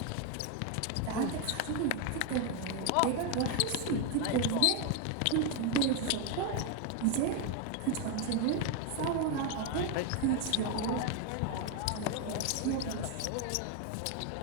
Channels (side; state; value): both; different; correlation 0.01